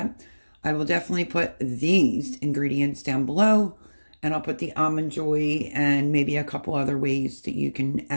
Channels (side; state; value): both; inverted; correlation -1.00